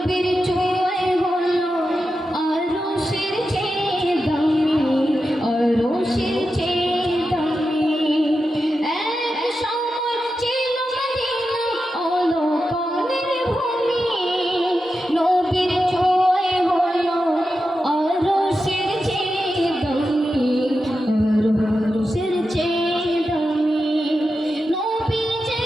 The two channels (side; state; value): both; normal; correlation 0.90